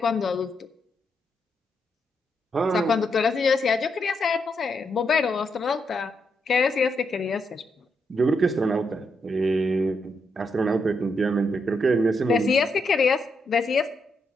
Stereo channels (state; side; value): normal; both; correlation 0.80